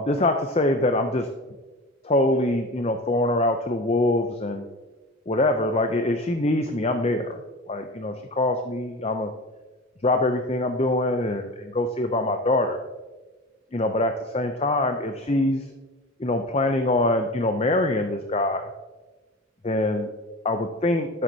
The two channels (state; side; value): normal; both; correlation 0.32